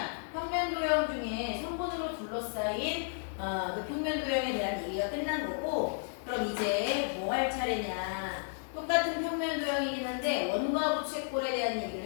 도형 중에 선분으로 둘러싸인 그 평면 도형에 대한 얘기가 끝난 거고, 그럼 이제 뭐 할 차례냐? 똑같은 평면 도형이긴 한데 원과 부채꼴에 대한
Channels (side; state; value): right; silent; digital silence